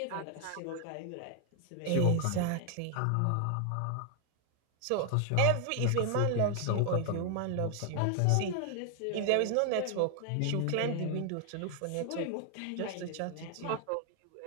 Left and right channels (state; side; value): different; both; correlation 0.00